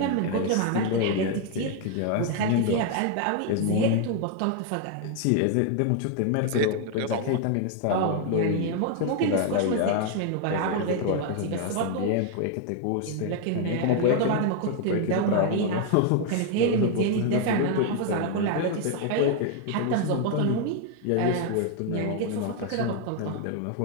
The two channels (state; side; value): different; both; correlation 0.00